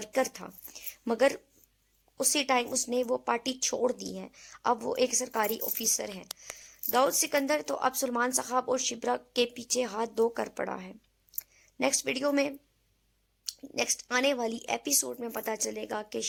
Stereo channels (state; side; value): identical; both; correlation 1.00